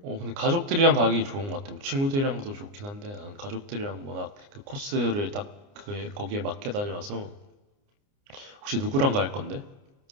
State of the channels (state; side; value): late; left; 29 ms